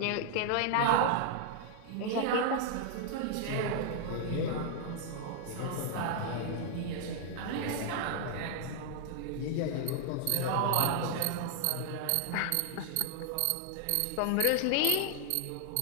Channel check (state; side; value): different; both; correlation 0.00